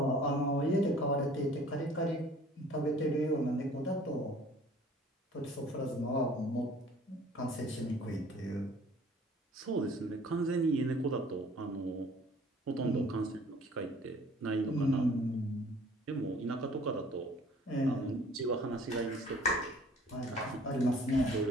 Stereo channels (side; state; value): both; normal; correlation 0.52